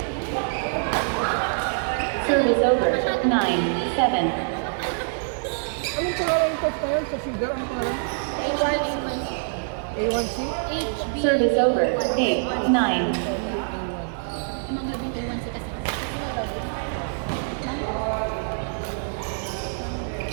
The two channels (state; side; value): silent; left; 62 dB below the other